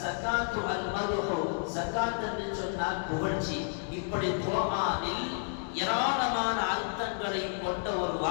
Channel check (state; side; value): silent; right; digital silence